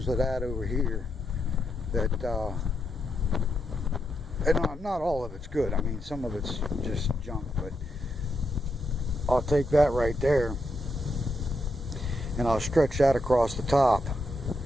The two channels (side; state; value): both; normal; correlation 0.82